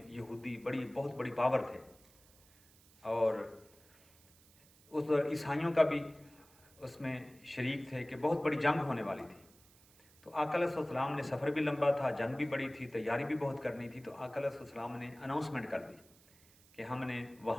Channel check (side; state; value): right; noise; hiss, 27 dB below the sound